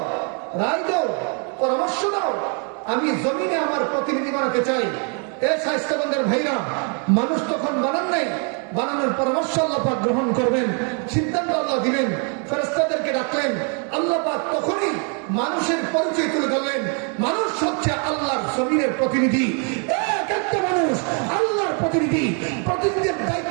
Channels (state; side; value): quieter; left; 38.8 dB